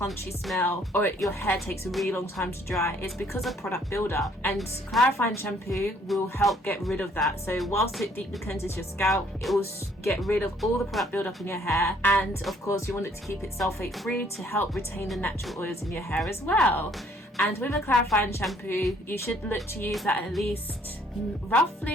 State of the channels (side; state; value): both; normal; correlation 0.63